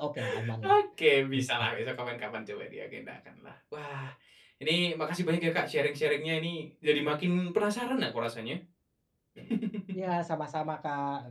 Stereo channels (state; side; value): identical; both; correlation 1.00